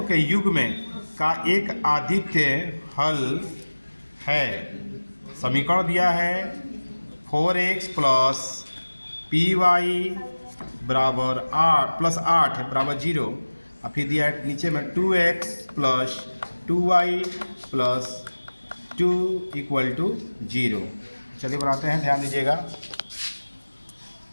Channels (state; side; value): inverted; both; correlation -1.00